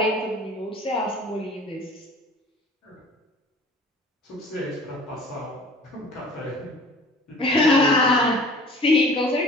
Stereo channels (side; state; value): both; normal; correlation 0.46